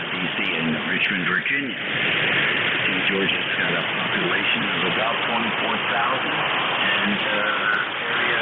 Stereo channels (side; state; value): both; identical; correlation 1.00